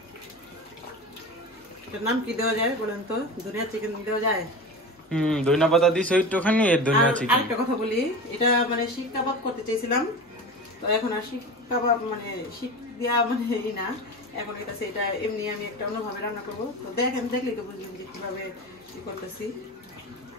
এটার নাম কি দেওয়া যায় বলেন তো? ধনিয়া চিকেন দেওয়া যায়? ধনিয়া পাতা দিছো একটুখানি, এর ধনিয়া চিকেন। আরেকটা কথা বলি, এটা মানে শিক কাবাব করতে চাইছিলাম, তো এখন আর শিক কাবাব মানে শিক দিয়া মানে এই না, এখন এটা এমনি আমি একটা অন্যভাবে রান্না করবো। তো দেখলেই তো বুঝলাম যে কিভাবে কি করতেছি।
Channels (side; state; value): both; normal; correlation 0.29